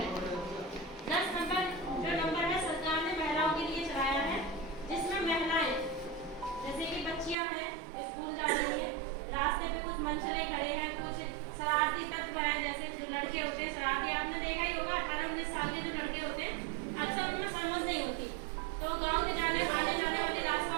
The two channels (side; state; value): left; drops out; at 7.4 s